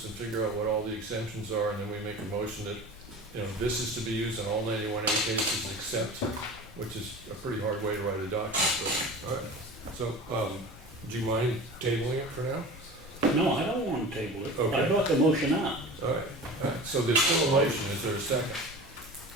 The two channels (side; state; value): both; normal; correlation 0.36